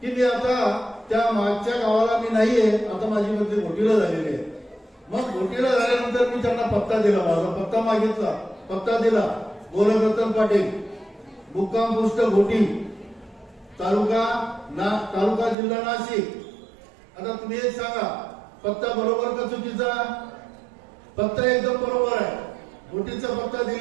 की मी आता त्या मागच्या गावाला मी नाहीये, आता माझी बदली घोटीला झालेली आहे. मग घोटीला झाल्यानंतर मी त्यांना पत्ता दिला, माझा पत्ता मागितला, पत्ता दिला. गोरखरत्न पाटील, मुक्काम पोस्ट घोटी, तालुका जिल्हा नाशिक. आता तुम्ही एक सांगा, पत्ता बरोबर का चुकीचा? पत्ता एकदम बरोबर आहे. घोटीचा पत्ता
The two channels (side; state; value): left; drops out; at 15.6 s